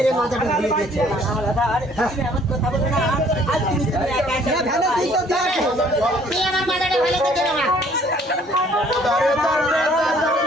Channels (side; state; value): both; normal; correlation 0.59